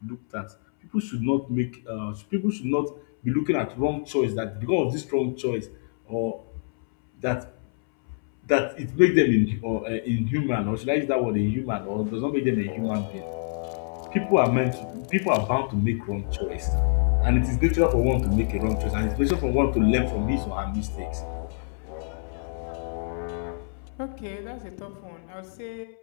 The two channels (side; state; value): right; silent; 61 dB below the other